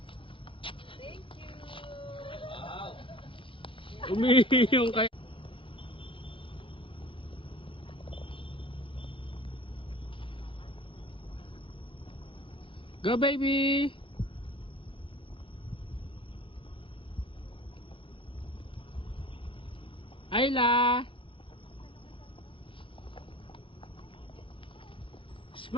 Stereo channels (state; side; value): late; right; 0.25 ms